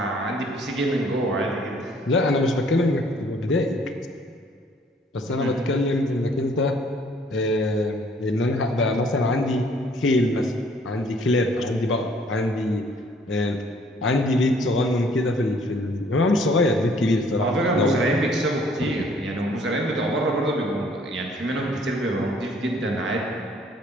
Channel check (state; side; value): normal; both; correlation 0.60